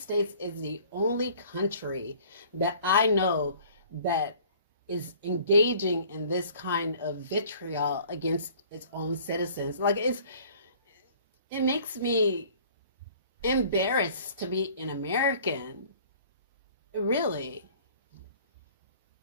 is the only country that I know that is engaging in this kind of vitriol against its own citizens. Like, it makes me embarrassed to be an American. Really.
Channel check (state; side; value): inverted; both; correlation -0.51